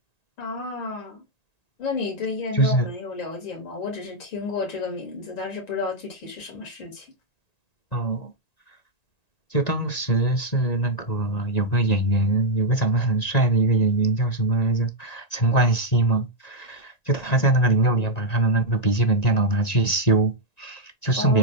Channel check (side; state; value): right; late; 1.9 ms